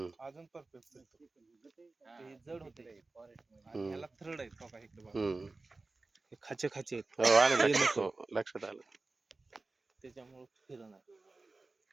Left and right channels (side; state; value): left; quieter; 3.5 dB